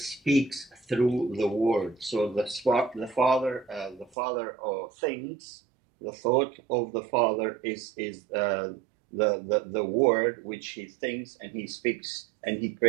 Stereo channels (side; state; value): left; drops out; at 4.1 s